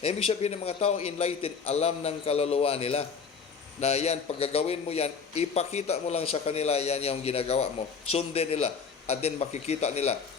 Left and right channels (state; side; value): quieter; right; 5.8 dB